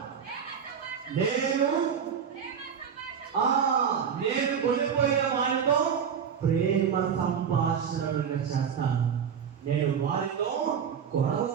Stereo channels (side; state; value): left; quieter; 7.4 dB